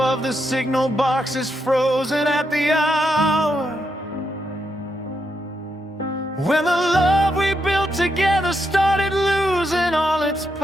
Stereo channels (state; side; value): normal; both; correlation 0.81